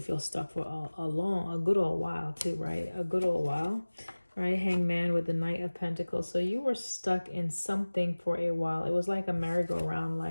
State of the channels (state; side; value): inverted; both; correlation -1.00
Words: feel stuck for a good old while too, right? A good old while, right? Hangman with the Knight of Pentacles. So you were stuck in something for a while. It was like a merry-go-round,